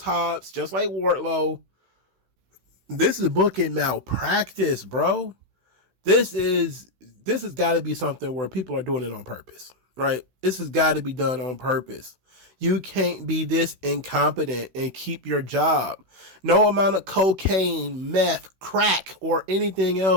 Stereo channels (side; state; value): left; late; 16 ms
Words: Hobbs, just like Wardlow. This is booking malpractice, bro. This has got to be something where people are doing it on purpose, right? This has got to be done on purpose. You can't be this incompetent and keep your job. No amount of cocaine, meth, crack, or anything